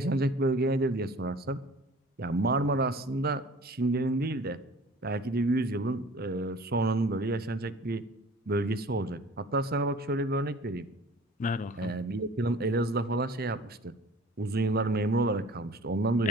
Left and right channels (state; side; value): normal; both; correlation 0.46